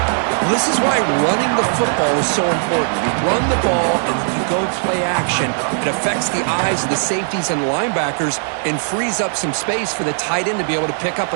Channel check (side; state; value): left; silent; digital silence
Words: Well, this is why running the football is so important. You run the ball and then you go play action. It affects the eyes of the safeties and linebackers and frees up some space for the tight end to be able to pick up